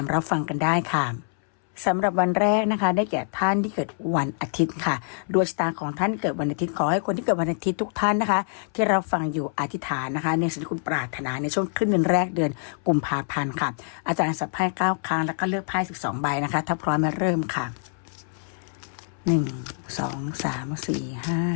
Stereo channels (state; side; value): silent; right; 61 dB below the other